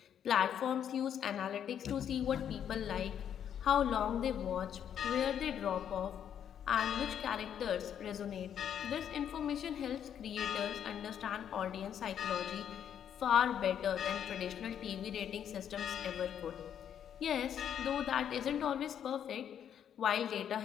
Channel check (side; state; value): right; quieter; 9.1 dB